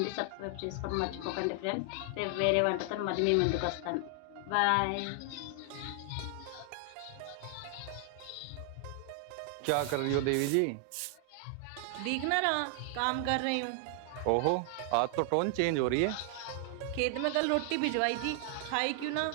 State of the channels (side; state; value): both; different; correlation 0.00